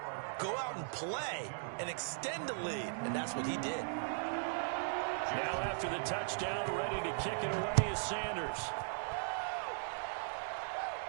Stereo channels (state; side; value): silent; left; digital silence